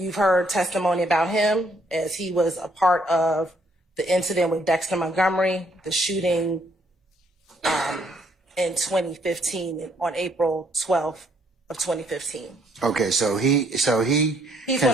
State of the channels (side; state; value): both; normal; correlation 0.69